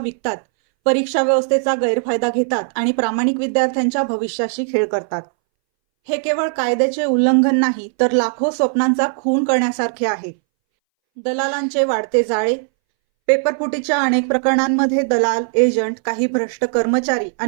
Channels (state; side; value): silent; left; 64 dB below the other